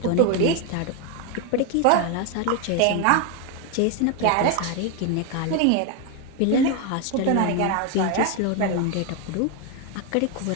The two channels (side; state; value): both; different; correlation 0.01